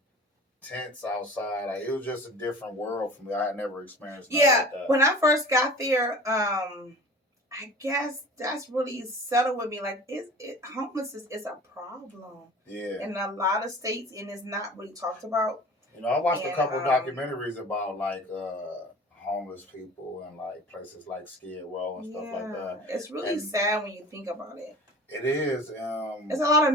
tents outside. Like it was just a different world for me. I had never experienced. Like that. When I first got there, I guess that's really settled with me. Like, homelessness is a problem. Yeah. In a lot of states, and it's not really talked about. I watched a couple documentaries about like homeless people and like places like Skid Row and stuff like that. It's really sad when you think about it. It is. It's a lot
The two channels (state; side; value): normal; both; correlation 0.41